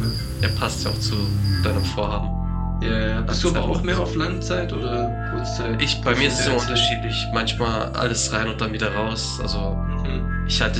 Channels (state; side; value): identical; both; correlation 1.00